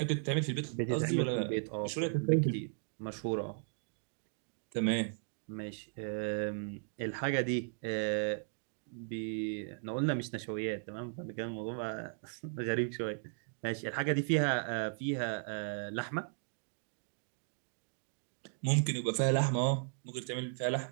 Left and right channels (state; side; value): silent; left; digital silence